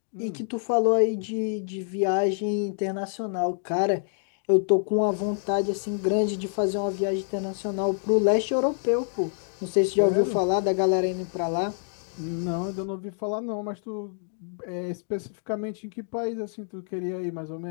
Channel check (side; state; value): right; silent; digital silence